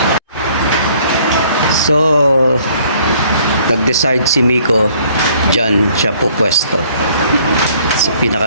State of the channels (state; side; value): inverted; both; correlation -0.60